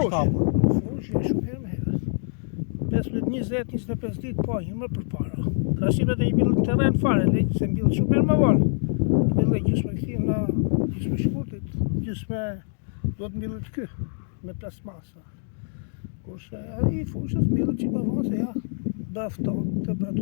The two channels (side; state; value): right; silent; digital silence